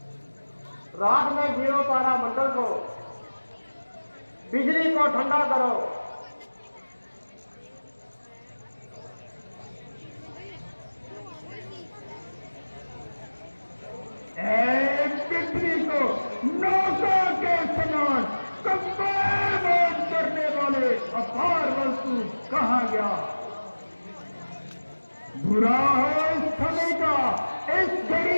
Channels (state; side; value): inverted; both; correlation -1.00